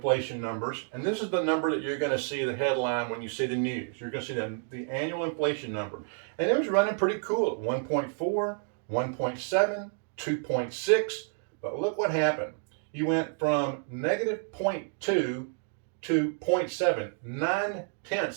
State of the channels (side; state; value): left; silent; 58 dB below the other